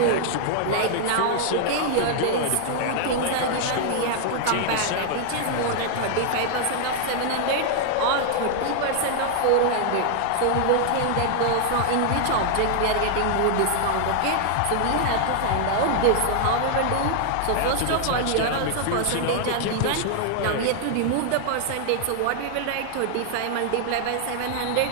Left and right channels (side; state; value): both; different; correlation 0.00